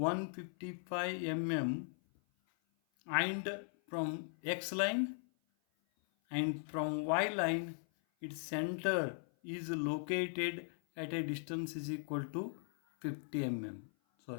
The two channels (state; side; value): silent; right; 52 dB below the other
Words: mm, and from x line and from y line its center is located at a distance is equal to 50 mm.